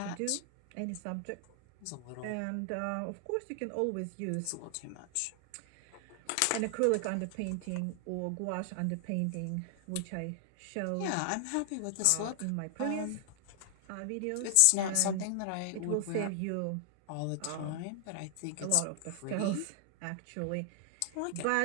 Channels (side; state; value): both; different; correlation 0.00